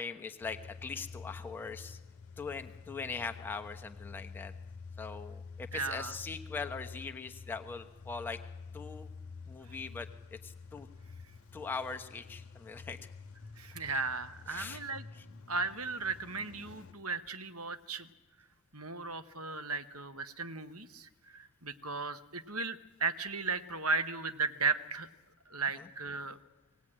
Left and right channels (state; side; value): normal; both; correlation 0.13